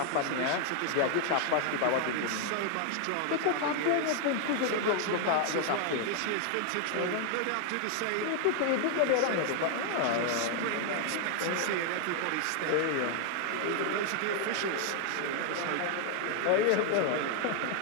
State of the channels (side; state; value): both; different; correlation 0.00